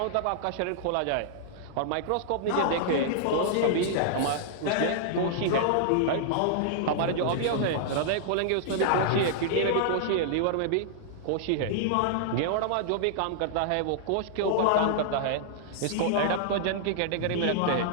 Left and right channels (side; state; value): both; different; correlation -0.01